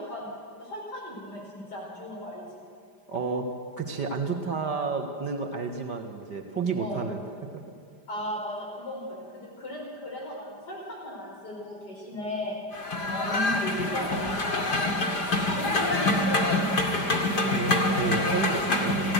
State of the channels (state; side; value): late; right; 5.0 ms